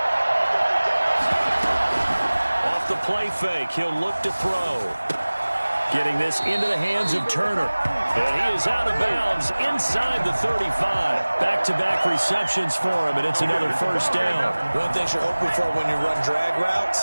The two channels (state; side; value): inverted; both; correlation -1.00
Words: The play fake, he'll look to throw. Getting this into the hands of Turner. And he is out of bounds inside the 35. Back-to-back receptions for him, and it's another first down. One thing you're hoping for when you run drag